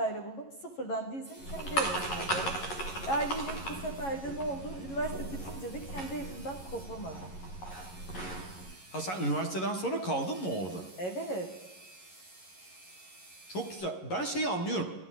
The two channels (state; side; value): late; right; 11 ms